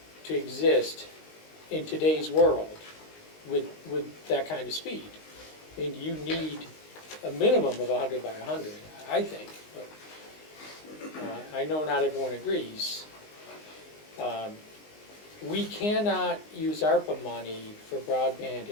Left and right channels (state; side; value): late; right; 19 ms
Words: to exist in today's world with that kind of speed. I mean, you need a minimum of 100 by 100, I think, but I know not everyone agrees. We cannot use ARPA money for broadband